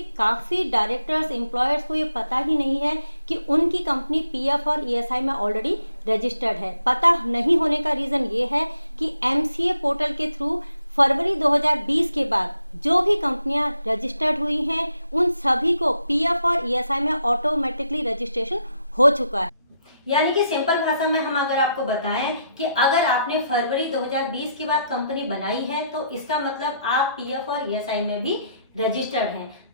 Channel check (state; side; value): inverted; both; correlation -0.77